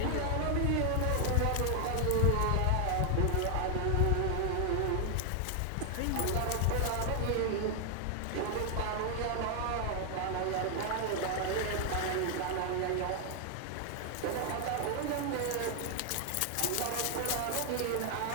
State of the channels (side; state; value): both; different; correlation 0.00